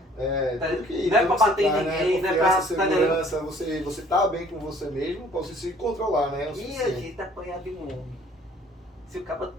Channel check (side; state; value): both; normal; correlation 0.56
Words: Tudo que não é para bater em tá, ninguém, né? não é para... Segurança, você tá bem com você mesmo, para você se controlar, né? E a gente apanhar de um homem. Se o cara